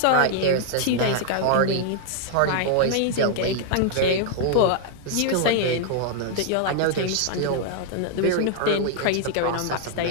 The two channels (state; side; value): different; both; correlation 0.00